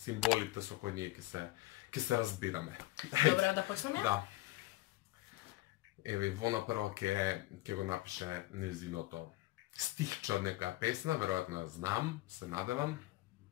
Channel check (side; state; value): right; quieter; 18.8 dB